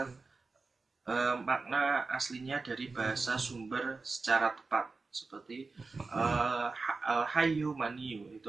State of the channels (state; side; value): quieter; left; 4.0 dB